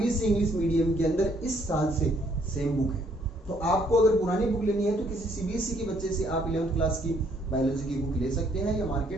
इंग्लिश मीडियम के अंदर इस साल से सेम बुक है। तो आपको अगर पुरानी बुक लेनी है तो किसी सीबीएसई के बच्चे से आप 11th क्लास की बायोलॉजी की बुक ले सकते हैं, या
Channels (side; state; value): both; normal; correlation 0.66